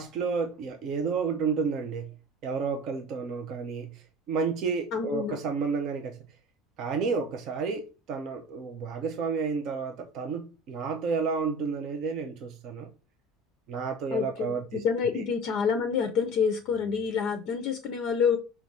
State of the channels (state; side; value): normal; both; correlation 0.38